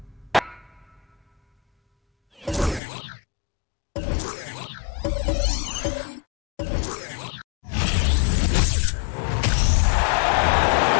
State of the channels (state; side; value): drops out; right; at 2.8 s